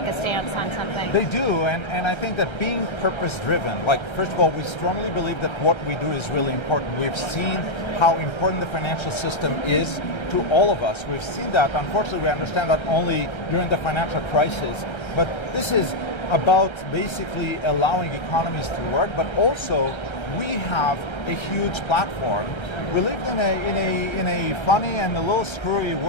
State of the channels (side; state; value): right; late; 1.3 ms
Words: a stance on something. They do, and I think that being purpose-driven, like, first of all, we strongly believe that what we do is really important. We've seen how important the financial system is to all of us. We've seen that. Unfortunately, we understand that only during the financial crisis. But this is about basically allowing economies to work, but also we have a huge platform. We live in a funny and a little screwy